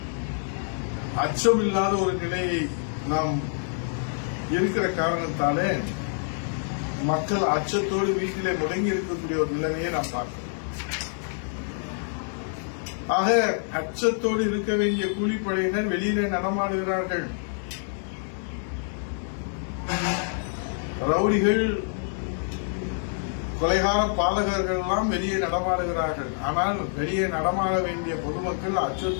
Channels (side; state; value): right; silent; digital silence